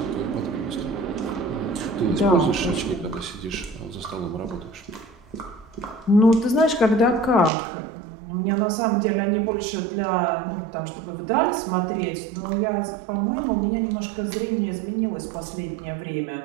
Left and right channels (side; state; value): left; drops out; at 7.5 s